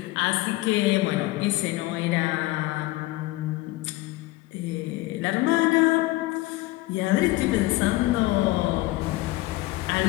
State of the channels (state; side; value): quieter; right; 19.2 dB